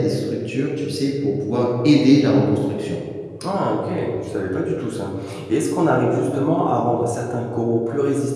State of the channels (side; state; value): both; identical; correlation 1.00